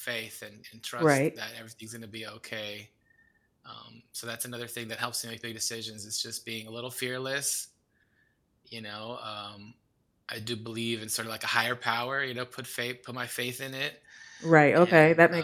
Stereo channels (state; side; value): identical; both; correlation 1.00